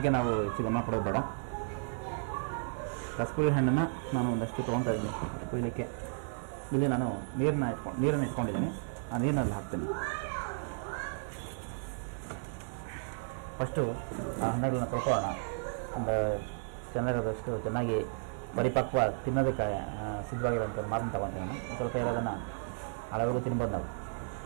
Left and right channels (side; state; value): left; silent; digital silence